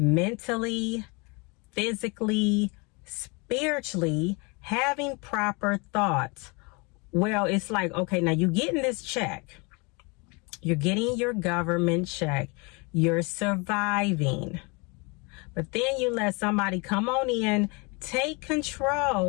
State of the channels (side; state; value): right; quieter; 29.5 dB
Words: physically, spiritually, having proper thoughts. Well, it's like, okay, now you're getting this check. You're getting your government check. You're surviving. But then you let somebody come on in, take